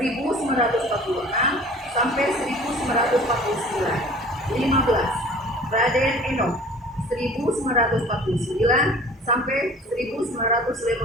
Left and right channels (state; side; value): normal; both; correlation 0.46